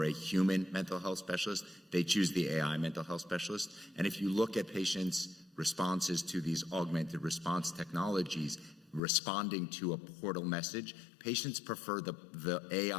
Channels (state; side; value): drops out; right; at 9.0 s